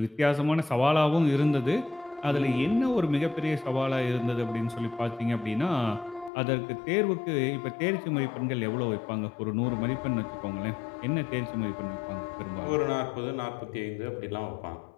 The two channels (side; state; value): right; drops out; at 6.3 s